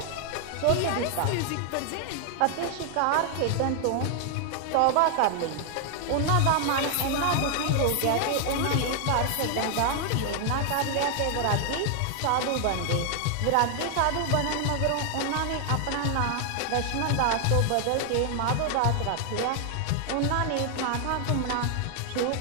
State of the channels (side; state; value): both; different; correlation 0.00